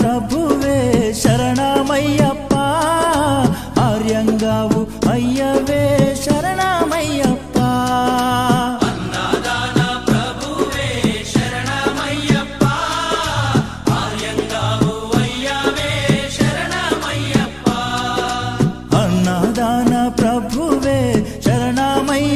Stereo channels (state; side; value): identical; both; correlation 1.00